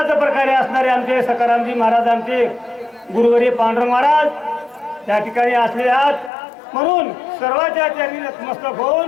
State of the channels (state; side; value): drops out; right; at 6.3 s